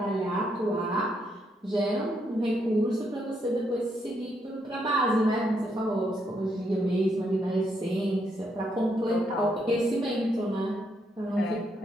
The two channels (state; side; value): normal; both; correlation 0.77